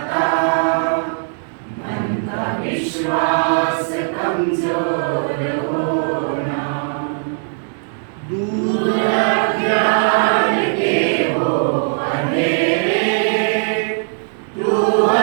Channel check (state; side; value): silent; left; digital silence